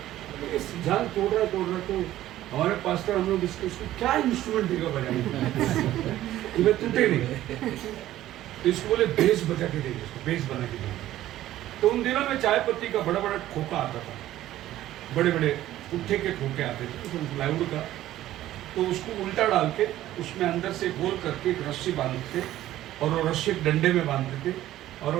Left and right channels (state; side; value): quieter; left; 13.9 dB